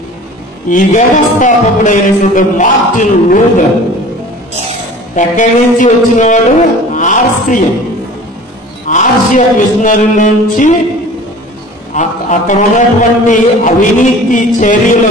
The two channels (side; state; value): both; normal; correlation 0.43